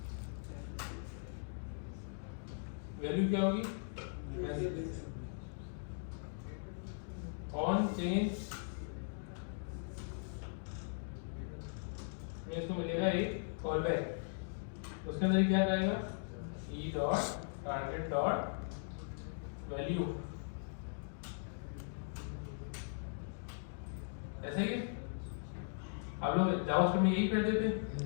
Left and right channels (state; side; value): silent; right; digital silence